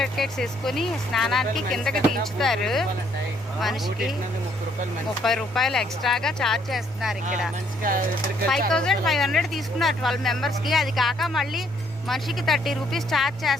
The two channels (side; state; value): both; normal; correlation 0.67